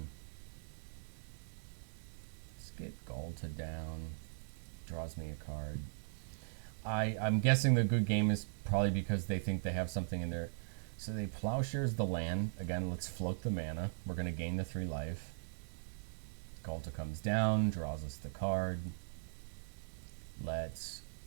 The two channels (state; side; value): silent; left; digital silence